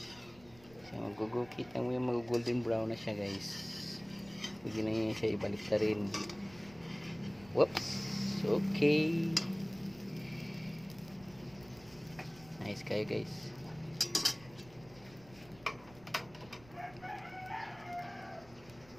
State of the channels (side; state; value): right; noise; rumble, 23 dB below the sound